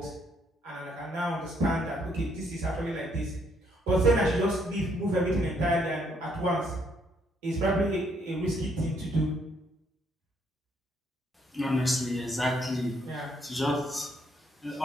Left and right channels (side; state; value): both; normal; correlation 0.70